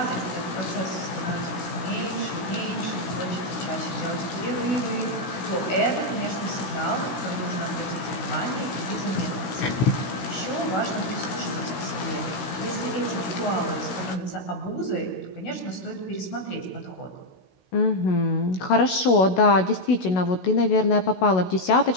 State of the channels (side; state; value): right; late; 16 ms